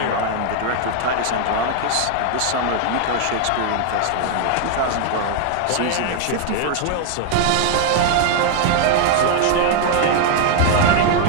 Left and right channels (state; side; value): different; both; correlation 0.00